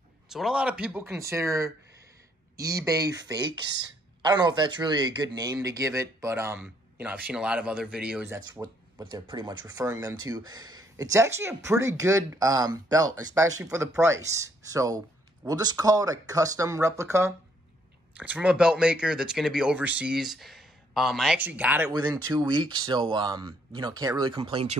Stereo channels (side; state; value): both; normal; correlation 0.69